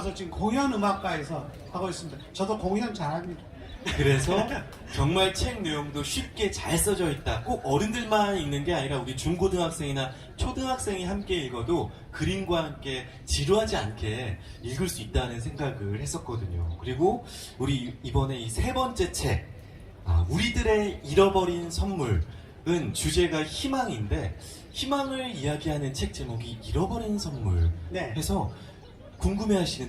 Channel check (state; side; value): identical; both; correlation 1.00